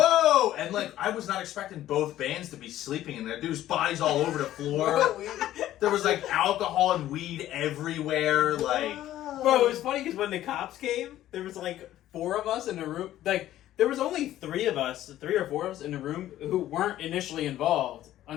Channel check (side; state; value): right; quieter; 13.4 dB